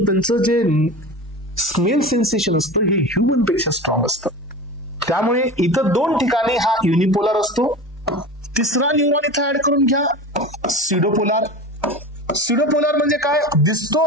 त्यांचं जे स्मेल सेन्सेशन असतं हे ह्युमन पेक्षा स्ट्रॉंग असतं. त्यामुळे इथं 2 ठिकाणी हा युनिपोलार असतो. तिसरा न्यूरॉन इथं ऍड करून घ्या, सिडोपोलार. सिडोपोलार म्हणजे काय? दिसतो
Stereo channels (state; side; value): normal; both; correlation 0.31